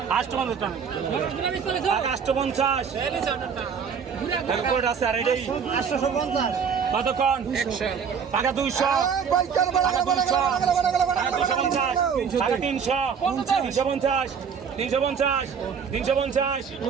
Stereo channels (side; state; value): left; quieter; 6.7 dB